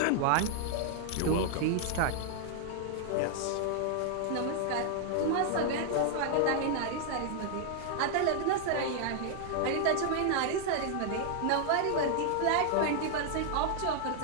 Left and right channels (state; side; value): different; both; correlation 0.00